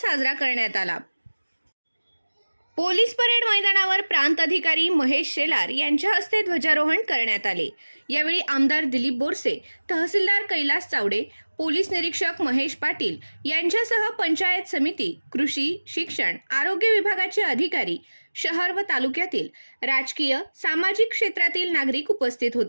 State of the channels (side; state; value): both; inverted; correlation -1.00